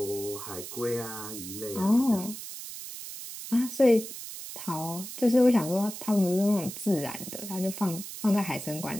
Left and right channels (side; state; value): right; noise; hiss, 10 dB below the sound